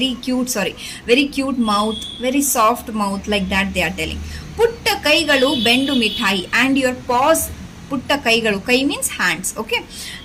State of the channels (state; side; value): identical; both; correlation 1.00